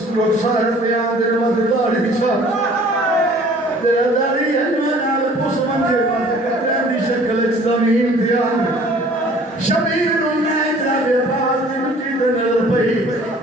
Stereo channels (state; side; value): normal; both; correlation 0.52